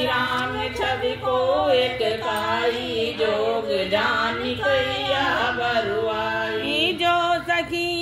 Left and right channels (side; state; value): both; identical; correlation 1.00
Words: राम छवि को एक काई जोग जानी कैया बरुआई जो